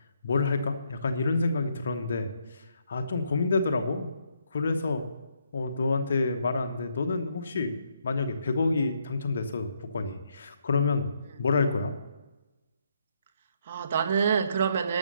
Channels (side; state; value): both; inverted; correlation -0.73